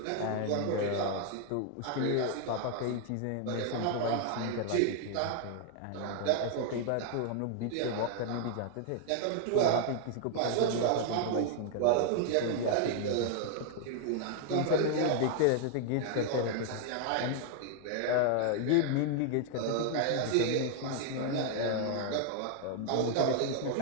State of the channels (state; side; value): different; both; correlation 0.00